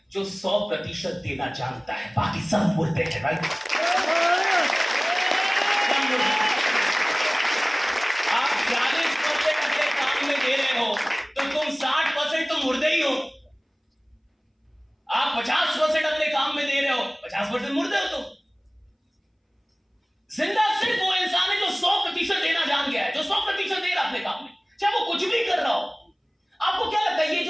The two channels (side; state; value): both; identical; correlation 1.00